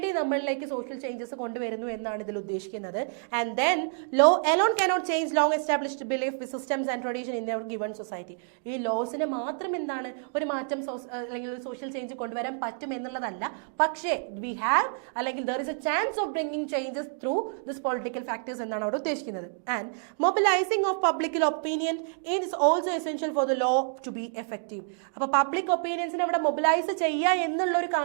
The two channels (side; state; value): left; silent; 59 dB below the other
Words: നമ്മളിലേക്ക് സോഷ്യൽ ചേഞ്ചസ് കൊണ്ടുവരുന്നു എന്നാണ് ഇതിൽ ഉദ്ദേശിക്കുന്നത്. And then law alone cannot change long established belief systems and tradition in our given society. ഈ ലോസിന് മാത്രം എന്താണ് ഒരു മാറ്റം അല്ലെങ്കിൽ ഒരു സോഷ്യൽ ചേഞ്ച് കൊണ്ടുവരാൻ പറ്റും എന്നുള്ളതല്ല, പക്ഷേ വി ഹാവ് അല്ലെങ്കിൽ there is a chance of bringing changes through this political factors എന്നാണ് അവിടെ ഉദ്ദേശിക്കുന്നത്. And mobilising of public opinion is also essential for the law to be effective. അപ്പോൾ പബ്ലിക് ഒപ്പീനിയൻസിനെ അവിടെ മൊബിലൈസ് ചെയ്യുക എന്നുള്ള ഒരു